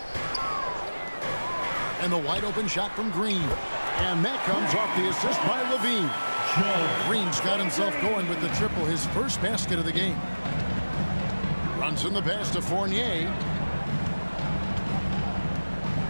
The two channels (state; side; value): inverted; both; correlation -1.00